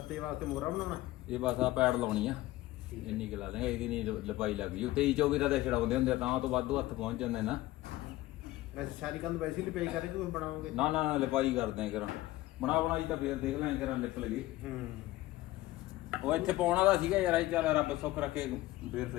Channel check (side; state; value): right; quieter; 17.2 dB